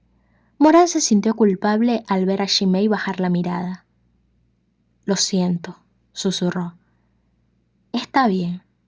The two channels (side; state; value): both; identical; correlation 1.00